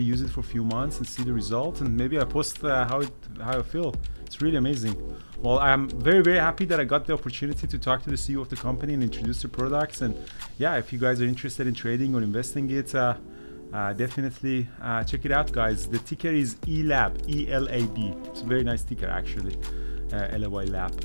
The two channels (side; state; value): both; inverted; correlation -1.00